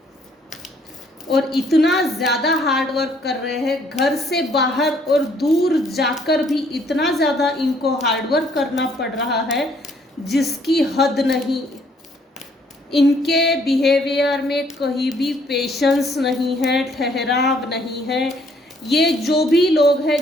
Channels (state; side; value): normal; both; correlation 0.65